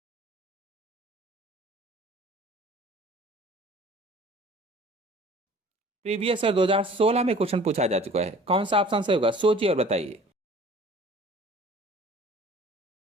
Previous year 2016 में क्वेश्चन पूछा जा चुका है। कौन सा ऑप्शन सही होगा? सोचिए और बताइए।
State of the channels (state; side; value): normal; both; correlation 0.49